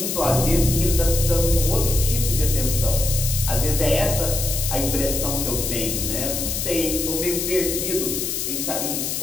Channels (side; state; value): left; noise; hiss, 2 dB below the sound